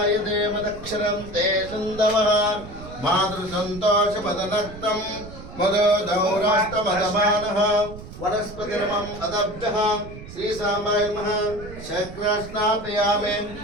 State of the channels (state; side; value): noise; right; rumble, 14 dB below the sound